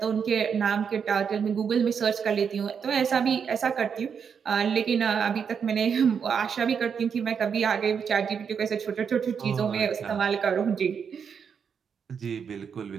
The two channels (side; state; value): left; quieter; 6.8 dB